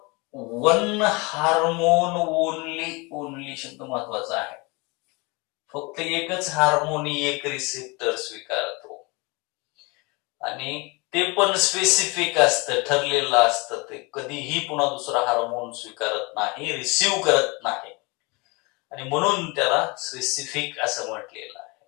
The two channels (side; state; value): right; quieter; 27.4 dB